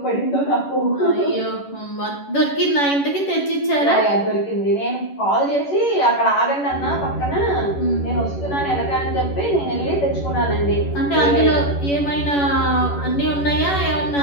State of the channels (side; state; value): right; late; 11 ms